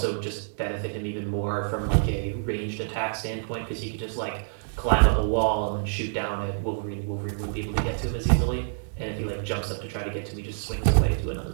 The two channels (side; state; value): left; silent; digital silence